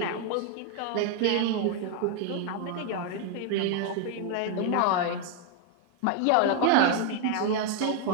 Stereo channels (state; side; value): different; both; correlation 0.01